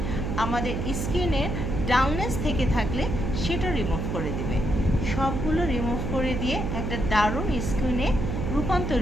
আমাদের স্কিনের ডাউননেস থেকে থাকলে সেটা রিমুভ করে দিবে। সবগুলো রিমুভ করে দিয়ে একটা দারুণ স্কিনে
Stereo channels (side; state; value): right; noise; hum, 2 dB below the sound